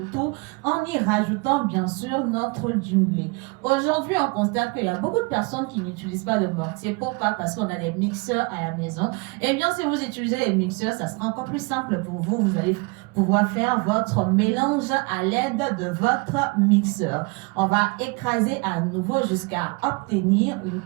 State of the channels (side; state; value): left; quieter; 28.7 dB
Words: tout en y rajoutant bien sûr notre djumblé. Aujourd'hui, on constate qu'il y a beaucoup de personnes qui n'utilisent pas de mortier. Pourquoi? Parce qu'on a des mixeurs à la maison. Eh bien, si vous utilisez les mixeurs, ça sera encore plus simple pour vous. Vous allez pouvoir faire votre mélange à l'aide de votre mixeur. On va écraser à nouveau jusqu'à obtenir une